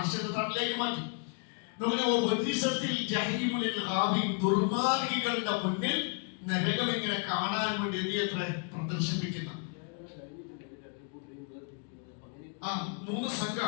തണലിലേക്ക് മാറ്റി. ദുർമാർഗികളുടെ മുന്നിൽ നരകം ഇങ്ങനെ കാണാൻ വേണ്ടി എത്ര പ്രദർശിപ്പിക്കുന്ന 3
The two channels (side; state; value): right; quieter; 37.6 dB